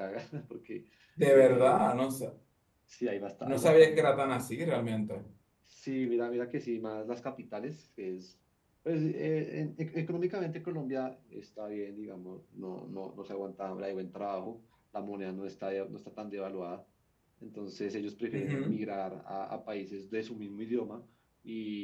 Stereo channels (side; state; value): both; identical; correlation 1.00